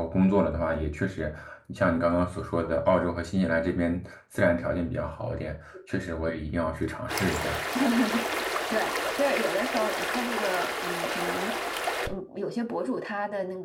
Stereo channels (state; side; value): identical; both; correlation 1.00